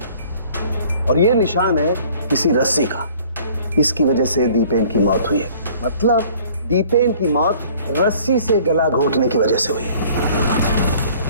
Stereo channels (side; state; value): both; inverted; correlation -0.53